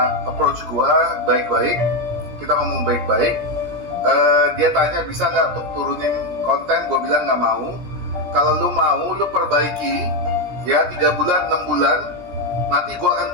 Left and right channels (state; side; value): late; left; 17 ms